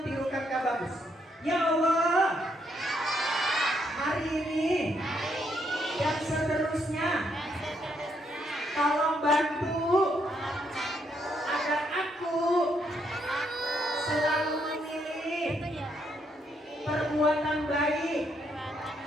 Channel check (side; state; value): both; normal; correlation 0.75